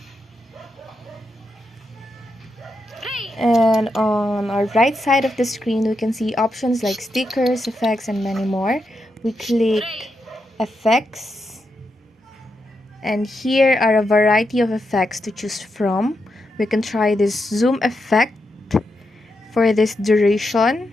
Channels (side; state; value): both; normal; correlation 0.85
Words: And on our right side of the screen, we can see options like stickers, effects, and many more. We click effects, and here are a variety of effects to choose from. We can try this zoom effect for this